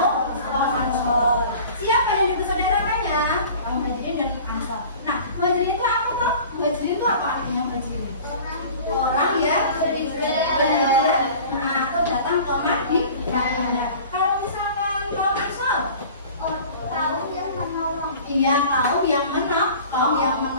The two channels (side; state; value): both; inverted; correlation -0.43